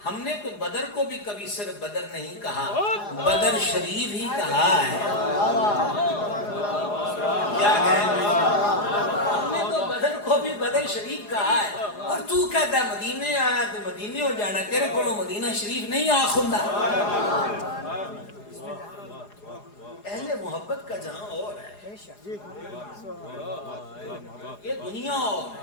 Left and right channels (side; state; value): right; late; 4.8 ms